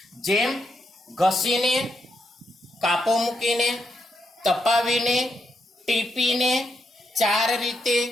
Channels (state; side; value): normal; both; correlation 0.80